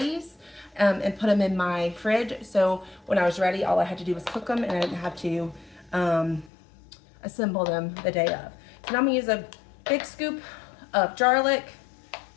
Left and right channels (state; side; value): drops out; right; at 6.5 s